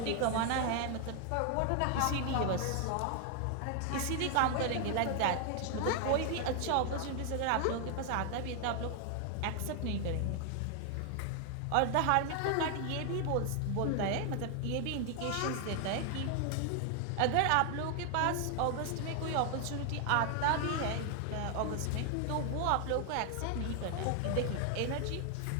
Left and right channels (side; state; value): both; different; correlation 0.00